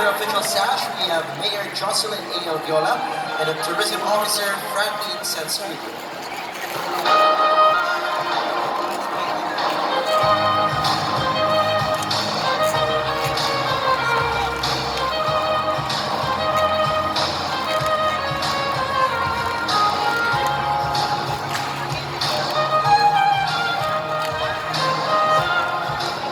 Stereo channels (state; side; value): identical; both; correlation 1.00